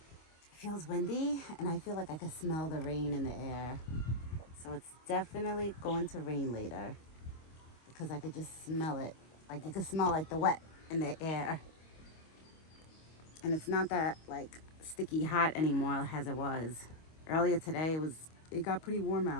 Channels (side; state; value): right; late; 25 ms